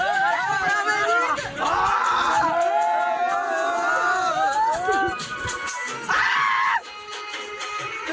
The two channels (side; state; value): both; identical; correlation 1.00